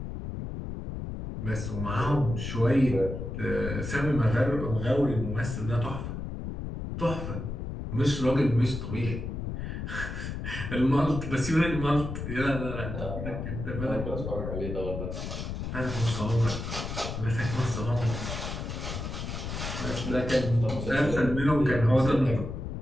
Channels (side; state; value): left; noise; rumble, 5 dB below the sound